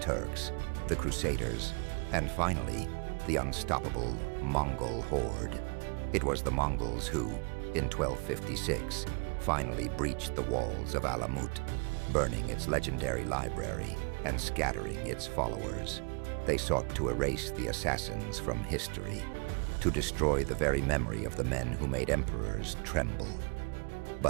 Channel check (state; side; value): quieter; left; 35.0 dB